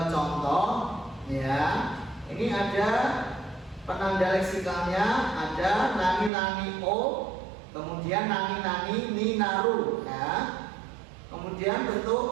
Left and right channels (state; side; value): drops out; left; at 6.3 s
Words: contoh ya. Ini ada penanda leksikalnya, ada nani-nani o, kemudian nani-nani ni naru ya. Kemudian